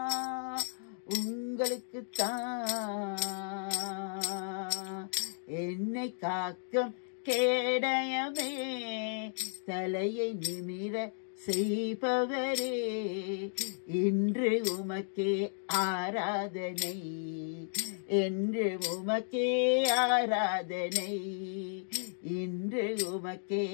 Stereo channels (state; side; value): silent; right; digital silence